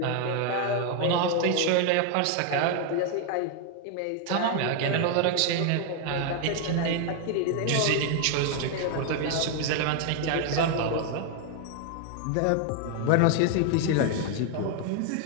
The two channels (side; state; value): both; different; correlation 0.00